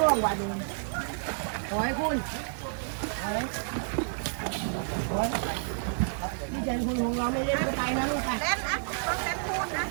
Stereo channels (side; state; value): left; silent; 58 dB below the other